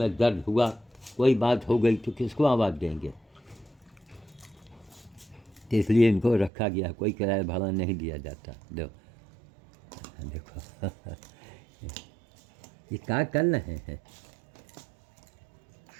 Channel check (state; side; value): drops out; left; at 6.5 s